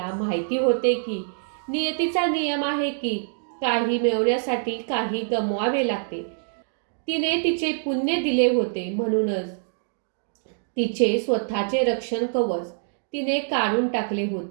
माहिती होते की नियतीचा नियम आहे की काही मिळवण्यासाठी काही गमवावे लागते. तिने तिचे पुण्य दिले होते, म्हणूनच तिचे स्वतःचे रक्षण कवच तिने काढून टाकले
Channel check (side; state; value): left; silent; digital silence